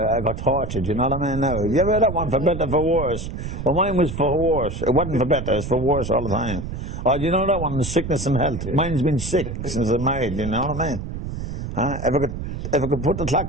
I got tortured, you know what I mean? Now, you ever heard that one, for better, for worse? Well, mine was for worse. It wasn't for better, it's for worse all the time. Oh, you know that one, sickness and health? Mine's been sick since I married, you know what I mean? If I could put the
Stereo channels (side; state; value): right; noise; rumble, 6 dB below the sound